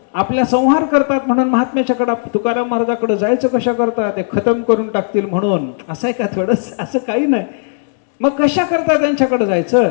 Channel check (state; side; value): silent; right; digital silence